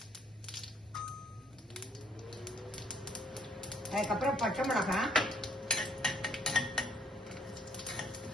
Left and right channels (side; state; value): both; normal; correlation 0.65